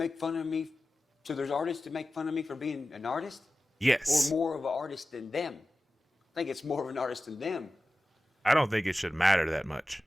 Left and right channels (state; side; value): normal; both; correlation 0.95